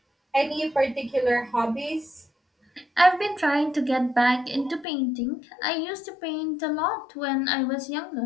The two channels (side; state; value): right; drops out; at 4.9 s